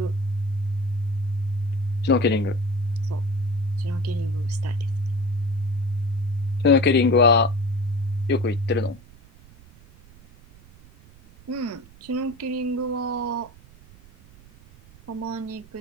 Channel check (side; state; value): right; noise; rumble, 23 dB below the sound